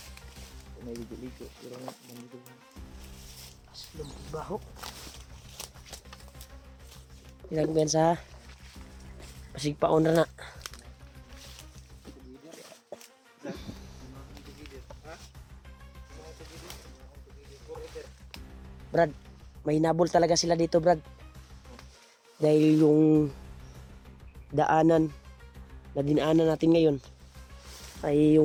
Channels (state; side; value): identical; both; correlation 1.00